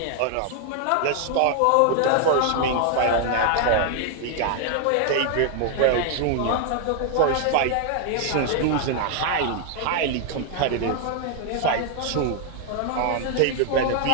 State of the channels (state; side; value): different; both; correlation 0.00